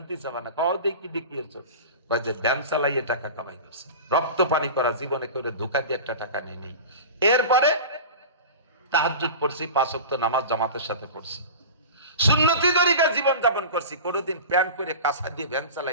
চাবা না। কও দেখি দেখিয়েছ যে ব্যান চালাইয়ে টাকা কামাই করছে, রক্ত পানি করা জীবনে করে ধোকা দিয়ে একটা টাকা নিয়ে নেই। এরপরে তাহাজ্জুদ পড়ছি, 5 ওয়াক্ত নামাজ জামাতের সাথে পড়ছি, সুন্নতি তরিকা জীবন যাপন করছি। কোনোদিন প্যান্ট করে কাঁচা দিয়ে ভ্যান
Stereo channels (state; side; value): inverted; both; correlation -0.32